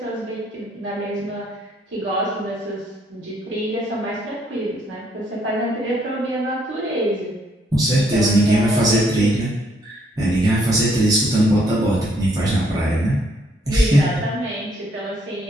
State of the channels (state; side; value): normal; both; correlation 0.69